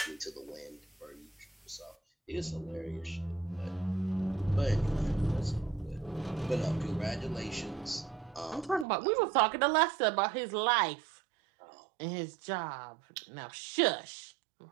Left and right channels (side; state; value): left; drops out; at 8.8 s